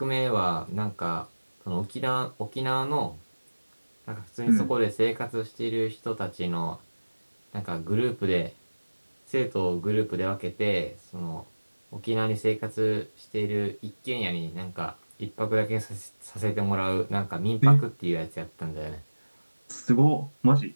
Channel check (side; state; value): both; inverted; correlation -1.00